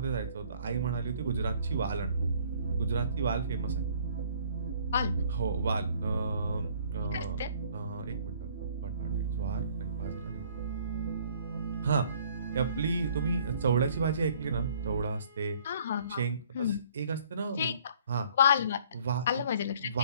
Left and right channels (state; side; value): inverted; both; correlation -0.57